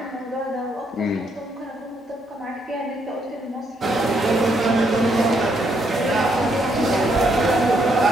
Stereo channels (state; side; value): normal; both; correlation 0.74